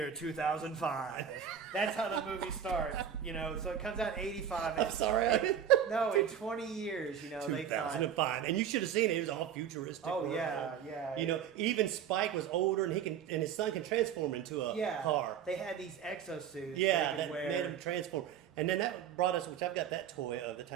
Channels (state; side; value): quieter; left; 8.7 dB